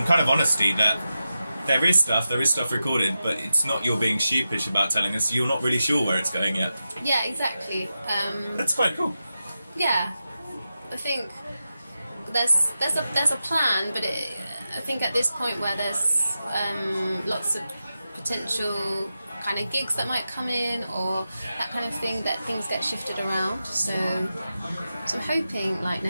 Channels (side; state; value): both; inverted; correlation -0.91